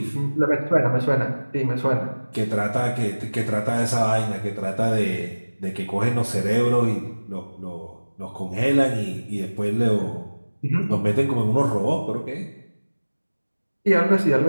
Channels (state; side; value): inverted; both; correlation -1.00